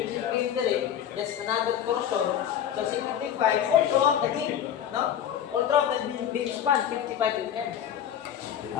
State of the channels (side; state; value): right; quieter; 9.6 dB